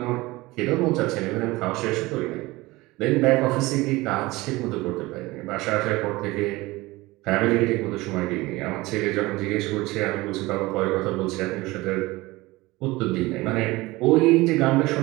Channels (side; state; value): left; quieter; 20.8 dB